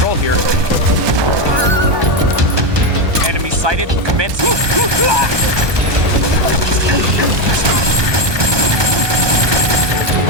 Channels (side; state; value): left; late; 1.2 ms